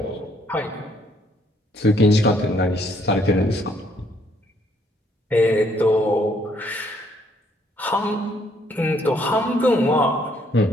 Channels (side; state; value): both; normal; correlation 0.68